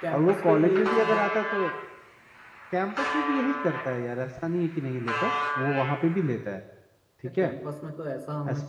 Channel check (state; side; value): identical; both; correlation 1.00